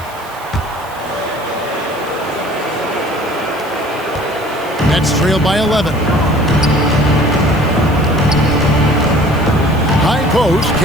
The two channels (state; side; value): noise; right; hiss, 22 dB below the sound